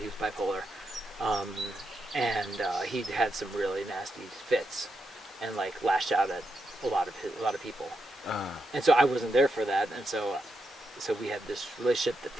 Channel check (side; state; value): both; normal; correlation 0.84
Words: he was bipolar, and he had some really nasty fits, and like lashed out at a lot of people. And so I wasn't there for that, and so we had this relationship that